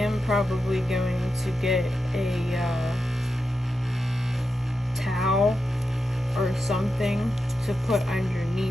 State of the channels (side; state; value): both; normal; correlation 0.89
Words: probably going to get a towel or something to put